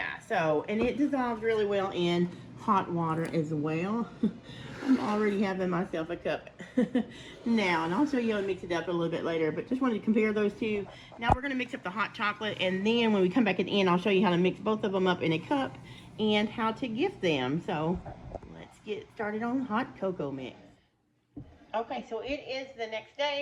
so, and it dissolves really well in hot water as well. I'm already having myself a cup now, and I'll show you how to mix it up a little bit later, but just wanted to compare those two. Now we're going to mix up the hot chocolate, and then when we come back at the end, I'll show you how to mix both of them up in a cup and how to gift them. So let's get started on hot cocoa mix. Okay, so it is the next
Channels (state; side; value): identical; both; correlation 1.00